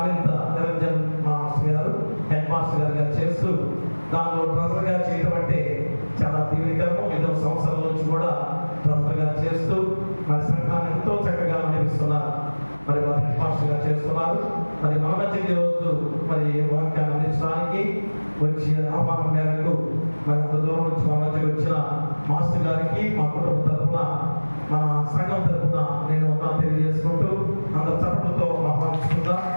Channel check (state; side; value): inverted; both; correlation -1.00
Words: నిరంజన్ మాస్టర్ గారు, హెడ్ మాస్టర్ గారుగా చేస్తూ దానిలో ట్రెజర్గా చేయడం అంటే చాలా దీవెనకరము. 5వ సంవత్సరాల నుంచి కూడా ట్రెజర్గా చేస్తూ మరి సంఘాన్ని ఎంతో చక్కగా నడిపిస్తున్నారు. మరి వారు హెడ్ మాస్టర్గా చేస్తున్నారు. మరి మన మధ్యకి రోజు మరి వాక్యాన్ని అందించడానికి వచ్చి ఆహ్వానం మేరకు మరి అంత దూరం నుంచి మా మధ్యకి వచ్చిన మాస్టర్ గారికి మా కుటుంబ తరఫున మన సంఘం తరఫున నేను తెలియజేసుకుంటూ అందరు చప్పట్లతో ఆహ్వానిస్తుందా.